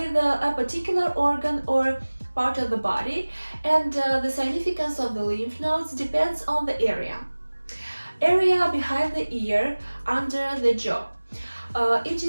a particular organ or part of the body, and the significance of the lymph nodes depends on the area. Area behind the ear, under the jaw. It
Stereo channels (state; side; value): inverted; both; correlation -1.00